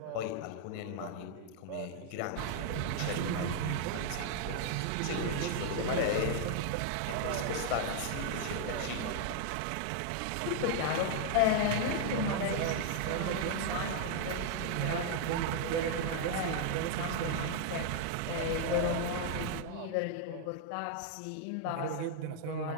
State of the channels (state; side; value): different; both; correlation 0.00